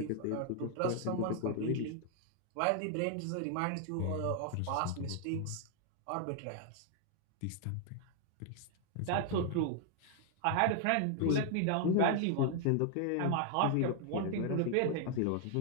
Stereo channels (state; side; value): different; both; correlation 0.00